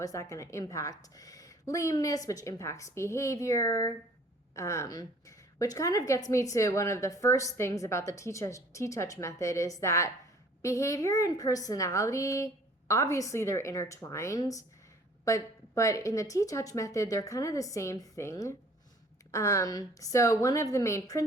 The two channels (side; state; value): both; normal; correlation 0.54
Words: that going to impact lameness, which impacts behavior, which kind of gets me to one of the first things about the TTouch method is that behavior and personality, obviously they're intertwined, but in the TTouch method, they're kind of the same thing. So one of the main